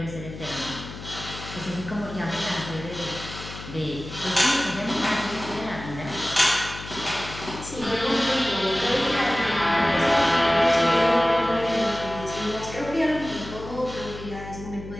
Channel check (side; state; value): left; noise; hum, 12 dB below the sound